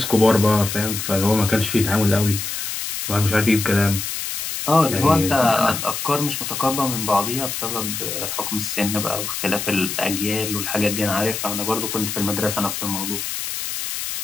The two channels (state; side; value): noise; left; hiss, 4 dB below the sound